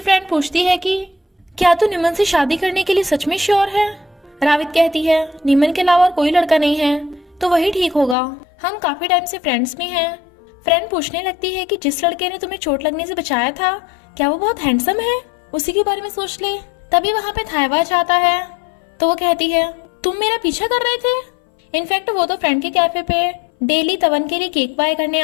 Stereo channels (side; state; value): right; drops out; at 8.2 s